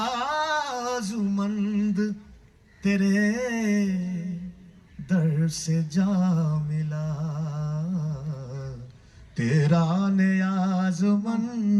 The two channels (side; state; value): both; identical; correlation 1.00